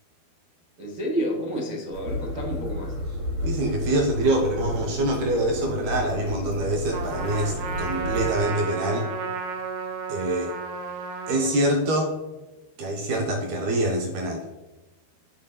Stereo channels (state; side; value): late; left; 13 ms